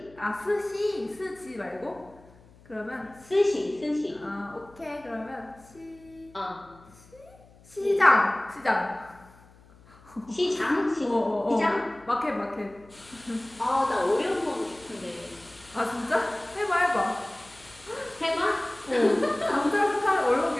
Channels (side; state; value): left; noise; hum, 25 dB below the sound